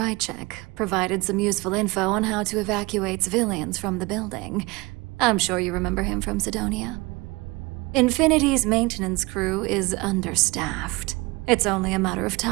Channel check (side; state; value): left; quieter; 24.1 dB